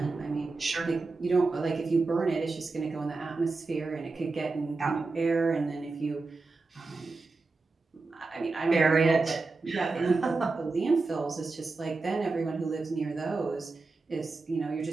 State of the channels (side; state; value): left; quieter; 3.8 dB